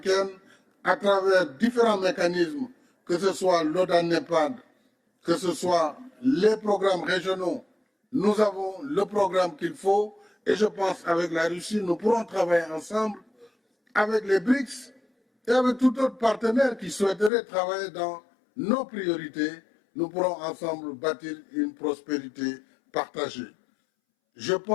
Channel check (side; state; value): right; drops out; at 17.3 s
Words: à travers différents mécanismes, que ce soit l'OTAN-NEPAD, que ce soit les programmes régionaux, nous avons le programme qu'il faut. Et je pense qu'avec la Russie, nous pourrons travailler ensemble avec les BRICS et avec tout autre partenaire qui souhaiterait travailler dans nos priorités. Nous pourrons ensemble bâtir une prospérité partagée. Je